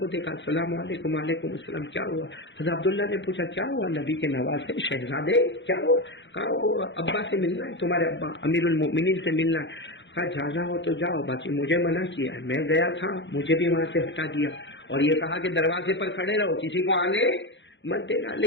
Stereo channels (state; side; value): late; right; 0.53 ms